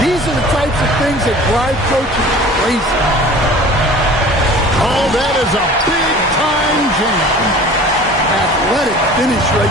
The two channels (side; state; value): both; normal; correlation 0.43